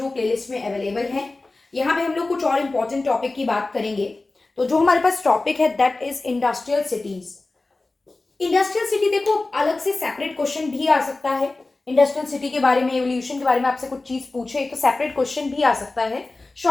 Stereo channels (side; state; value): right; quieter; 3.3 dB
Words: प्लेलिस्ट में अवेलेबल है। यहाँ पे हम लोग कुछ और इंपॉर्टेंट टॉपिक की बात करेंगे। तो जो हमारे पास टॉपिक है that is industrial cities. Industrial city देखो अलग से सेपरेट क्वेश्चन भी आ सकता है। इंडस्ट्रियल सिटी के बारे में, एवोल्यूशन के बारे में आपसे कुछ चीज पूछे तो सेपरेट क्वेश्चन भी आ सकता है।